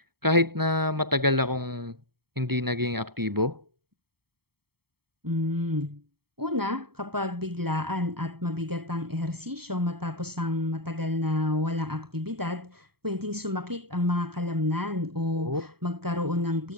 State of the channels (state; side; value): late; left; 0.96 ms